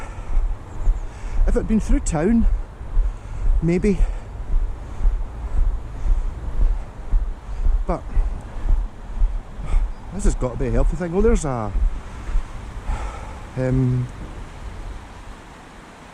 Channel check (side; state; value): both; identical; correlation 1.00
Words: if it had been through town, maybe, but This has got to be a healthy thing. Oh, there's a